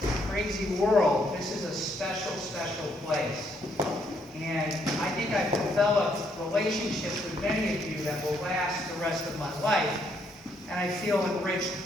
crazy world, this is a special, special place. And I think I've developed relationships with many of you that will last the rest of my life. And I feel enriched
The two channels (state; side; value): normal; both; correlation 0.72